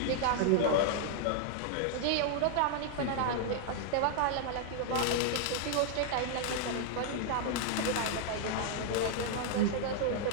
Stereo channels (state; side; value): different; both; correlation 0.00